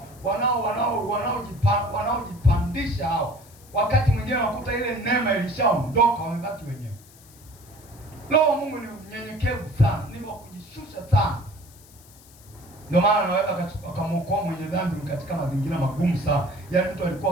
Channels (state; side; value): noise; left; hiss, 24 dB below the sound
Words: wanaojipandisha hao, wakati mwingine wakuta ile neema ilishaondoka, wamebaki wenyewe. Roho Mungu ni mnyenyekevu sana, ni wa kujishusha sana. Ndio maana anaweza akamwokoa mwenye dhambi katika mazingira magumu sana. Yaani mtu